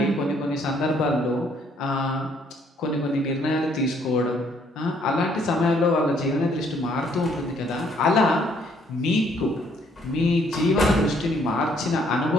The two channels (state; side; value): normal; both; correlation 0.66